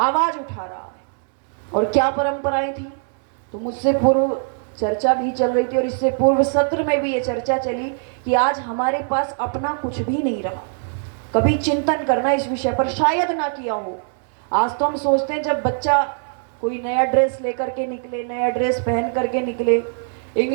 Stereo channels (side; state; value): left; silent; 65 dB below the other